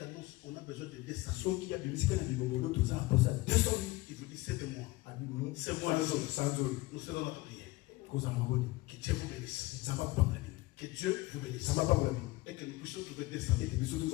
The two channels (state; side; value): quieter; right; 20.5 dB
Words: annonce on a besoin de 200 000, il vous dit c'est de moi. C'est moi. Nous serons dans la prière. Que Dieu vous bénisse. Que Dieu vous bénisse. Et que nous puissions trouver 200 000.